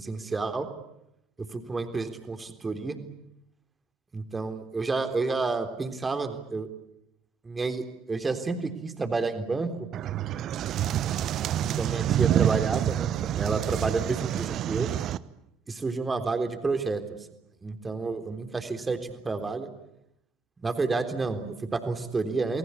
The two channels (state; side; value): quieter; left; 5.5 dB